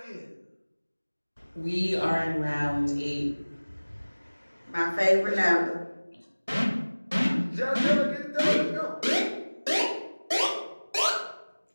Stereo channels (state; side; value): inverted; both; correlation -1.00